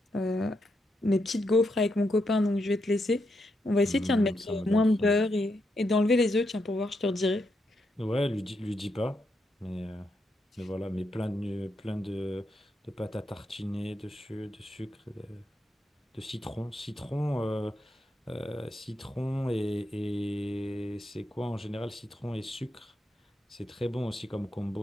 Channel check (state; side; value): normal; both; correlation 0.82